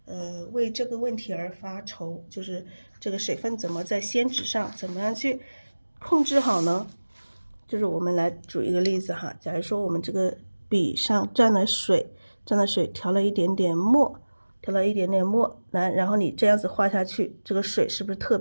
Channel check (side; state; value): both; inverted; correlation -1.00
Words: 为这个问题而发愁，就是这个水分怎么在宣纸上怎么样去控制好呢？就是我们来举一个例子哈，假如说我们这个笔上沾了水，调了一点点墨，然后你这样子画下去，这个水是不是特